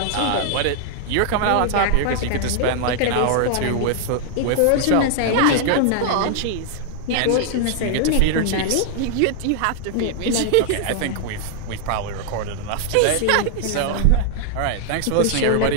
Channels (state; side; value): different; both; correlation 0.00